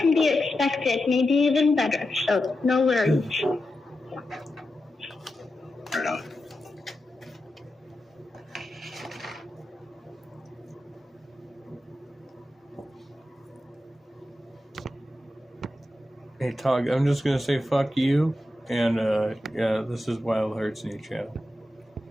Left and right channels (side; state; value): both; normal; correlation 0.90